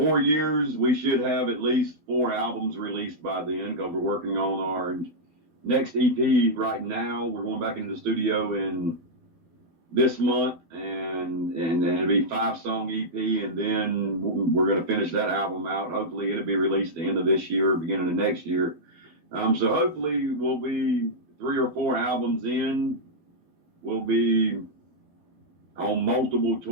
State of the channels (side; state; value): left; late; 12 ms